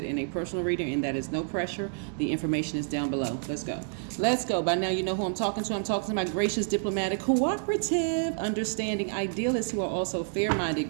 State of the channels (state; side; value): silent; left; digital silence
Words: in a personal reading, and that is no pressure, the information is down below. Let's go. Let's go. By now, you know who I'm talking to. I'm talking to my gracious, diplomatic, cooperative, understanding idealists who are also